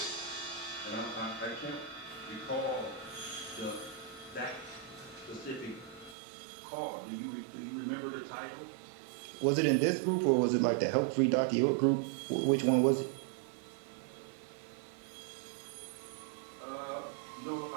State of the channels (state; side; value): drops out; left; at 6.2 s